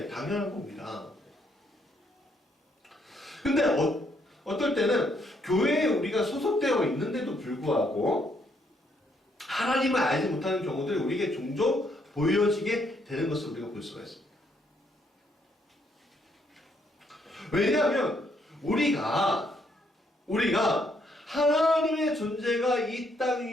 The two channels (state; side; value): normal; both; correlation 0.72